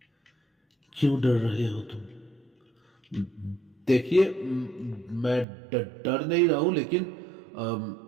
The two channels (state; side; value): drops out; left; at 5.5 s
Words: क्यों डर रहे हो तुम? देखिए, मैं डर नहीं रहा हूं, लेकिन